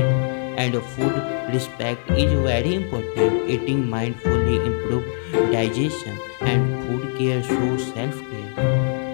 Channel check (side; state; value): right; silent; 60 dB below the other